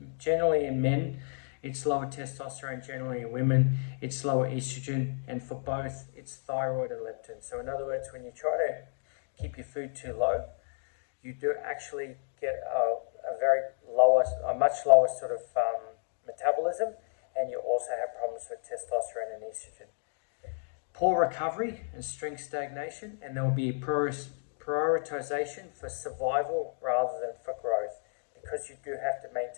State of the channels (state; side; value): silent; right; digital silence